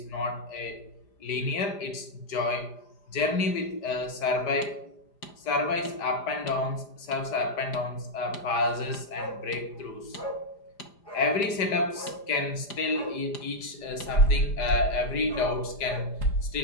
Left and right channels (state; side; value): late; right; 4.9 ms